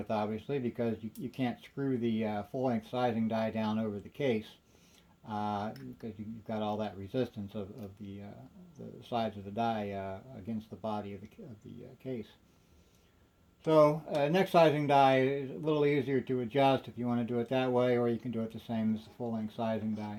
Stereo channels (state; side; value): identical; both; correlation 1.00